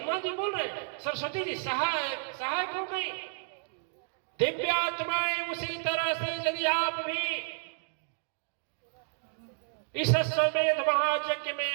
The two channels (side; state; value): left; silent; digital silence